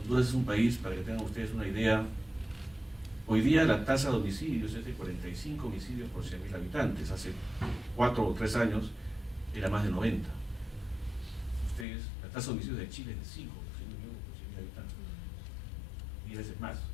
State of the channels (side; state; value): right; drops out; at 11.9 s